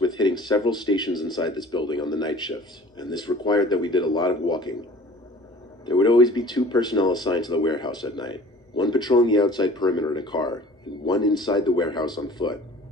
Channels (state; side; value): normal; both; correlation 0.47